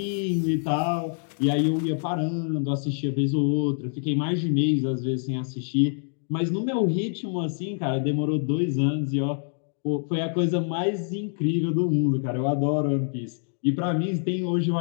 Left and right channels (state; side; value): silent; right; digital silence